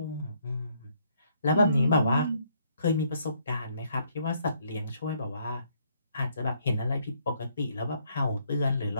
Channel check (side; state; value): both; inverted; correlation -0.70